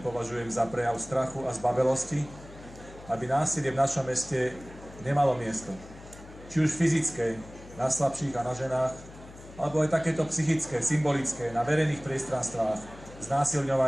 považujem za prejav strachu a zbavelosti, aby násilie v našom meste nemalo miesto. Či už fyzické, na slabších a na ženách, alebo aj takéto psychické, symbolické, na verejných priestranstvách,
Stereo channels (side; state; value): left; noise; hum, 18 dB below the sound